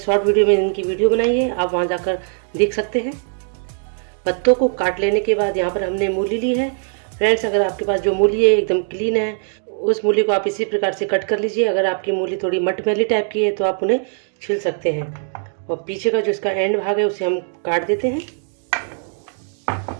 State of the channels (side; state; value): left; silent; digital silence